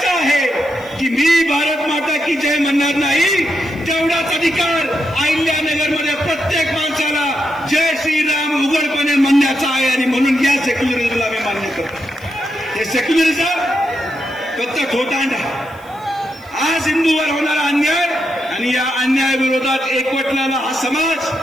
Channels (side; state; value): right; noise; hiss, 28 dB below the sound